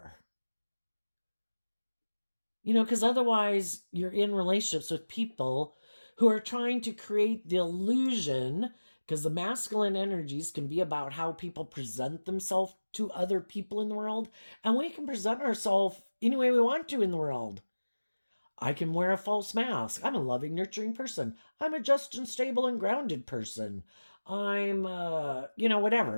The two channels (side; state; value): both; inverted; correlation -1.00